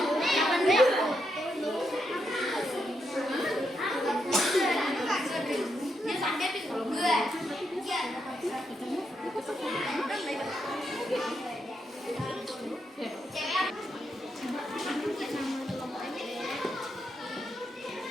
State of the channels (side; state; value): both; normal; correlation 0.81